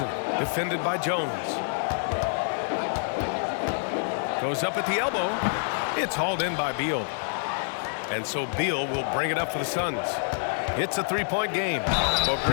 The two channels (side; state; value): right; silent; 60 dB below the other